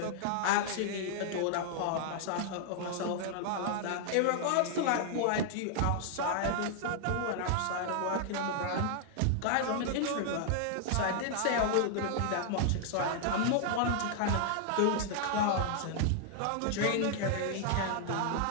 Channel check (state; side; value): different; both; correlation 0.00